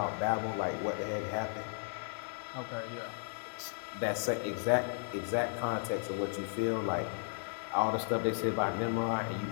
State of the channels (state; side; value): silent; right; 54 dB below the other